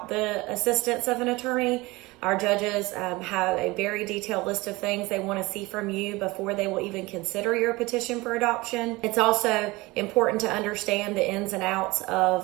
the assistance of an attorney. Our judges have a very detailed list of things they want to see from you before they will even consider your petition for adoption. It's also important to understand the ins and outs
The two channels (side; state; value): left; quieter; 22.0 dB